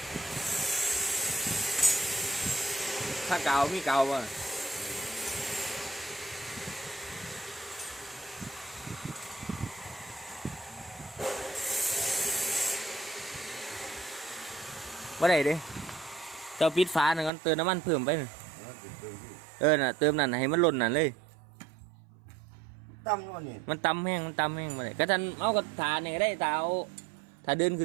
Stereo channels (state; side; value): drops out; left; at 17.3 s